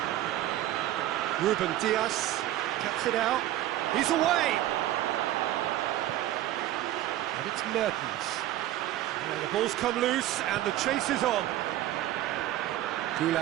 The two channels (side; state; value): left; quieter; 13.9 dB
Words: Ruben Diaz cuts it out. He's away! And it's Mertens. And the ball's come loose and the chase is on.